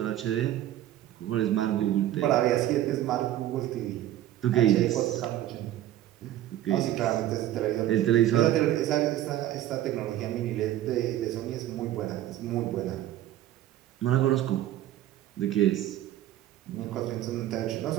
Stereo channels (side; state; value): left; quieter; 13.2 dB